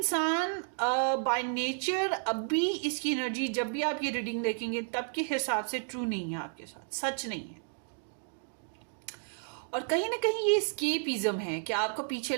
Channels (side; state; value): left; silent; digital silence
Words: बाय नेचर अभी इसकी एनर्जी, जब भी आप ये रीडिंग देखेंगे तब के हिसाब से ट्रू नहीं है, आपके साथ सच नहीं है। और कहीं ना कहीं ये स्केपिज्म है कि आपको पीछे